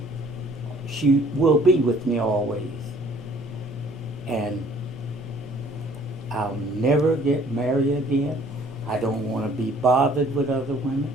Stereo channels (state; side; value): normal; both; correlation 0.56